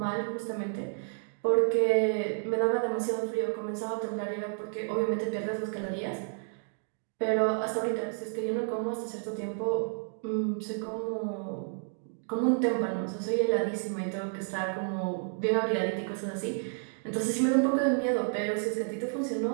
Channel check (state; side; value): silent; left; 57 dB below the other